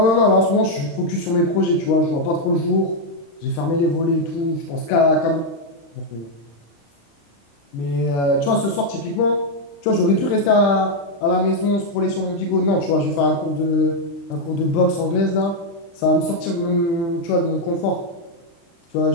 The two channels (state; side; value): late; right; 35 ms